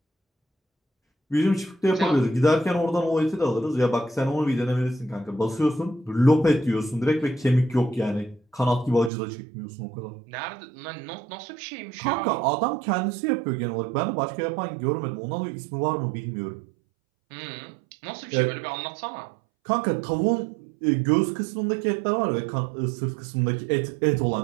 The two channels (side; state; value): left; drops out; at 9.1 s